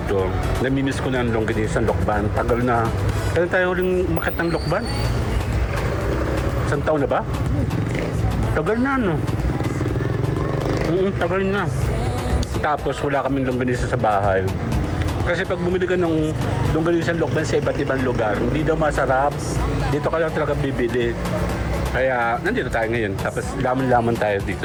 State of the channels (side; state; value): both; identical; correlation 1.00